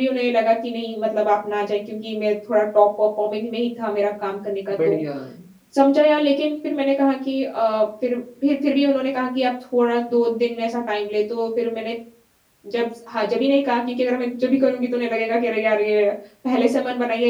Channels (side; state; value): both; identical; correlation 1.00